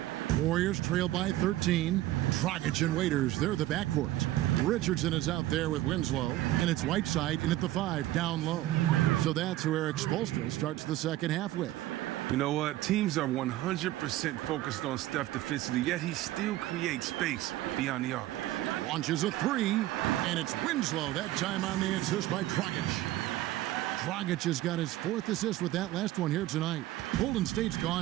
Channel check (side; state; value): left; quieter; 15.4 dB